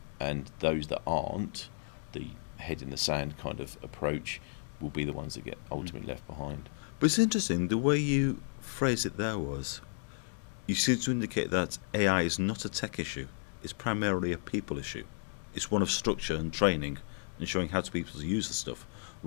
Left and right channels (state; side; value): silent; right; digital silence